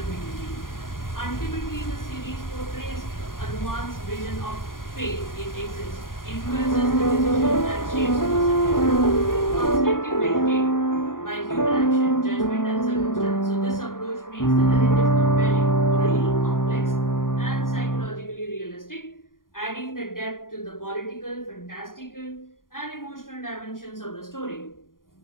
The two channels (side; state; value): right; late; 0.91 ms